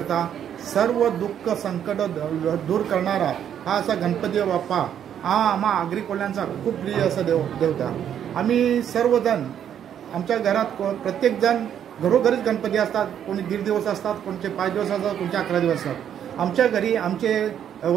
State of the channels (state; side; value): quieter; left; 9.4 dB